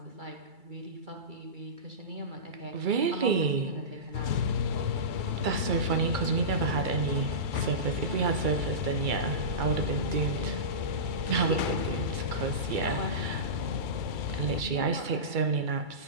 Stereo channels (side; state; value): left; late; 2.3 ms